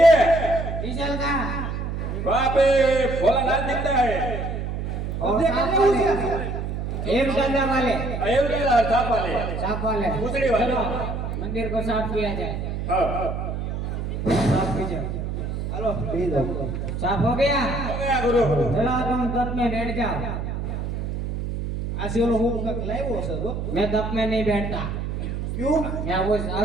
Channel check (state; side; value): noise; right; hum, 4 dB below the sound